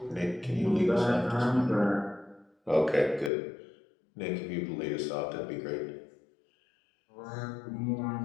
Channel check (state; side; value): drops out; right; at 3.3 s